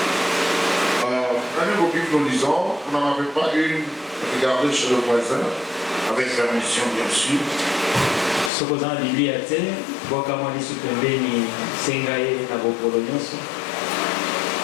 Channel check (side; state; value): right; drops out; at 8.5 s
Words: Nous lisons, vous n'en avez pas une, regardez chez le voisin, avec permission bien sûr.